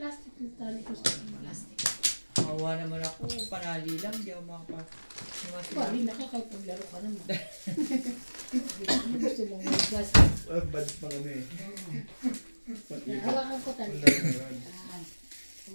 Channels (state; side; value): inverted; both; correlation -1.00